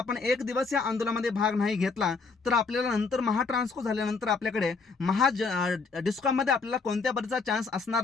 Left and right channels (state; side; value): quieter; right; 4.5 dB